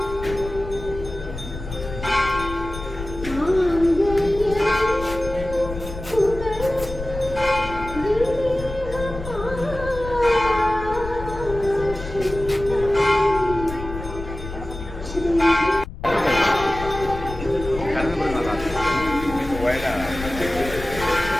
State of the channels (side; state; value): left; noise; rumble, 10 dB below the sound